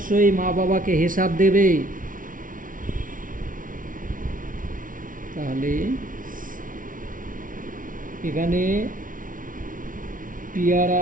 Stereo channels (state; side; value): late; left; 0.39 ms